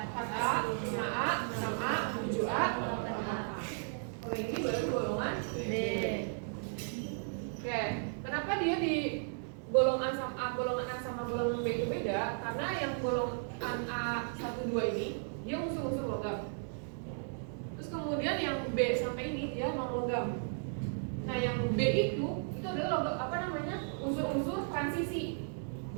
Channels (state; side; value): silent; left; 54 dB below the other